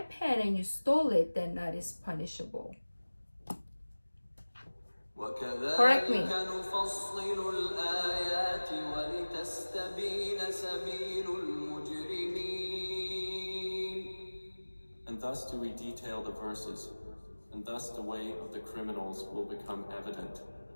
pen and you stole it, then that is punishable. Correct me. وكذلك نفصل الآيات ولتستبين سبيل المجرمين. And thus do we detail the verses, and thus the way of the criminals will become evident.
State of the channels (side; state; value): both; inverted; correlation -1.00